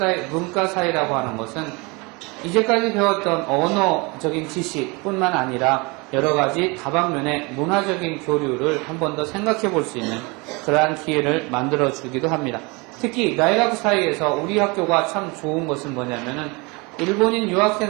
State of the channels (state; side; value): quieter; left; 27.5 dB